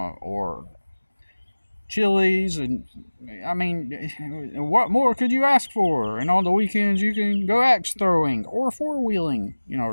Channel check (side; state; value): both; inverted; correlation -1.00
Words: Chili's, and I mean, what more could you ask for? And on the weekends you can go axe throwing or four wheeling,